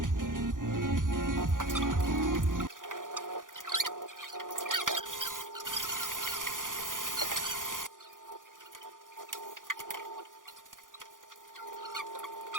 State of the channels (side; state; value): left; late; 0.89 ms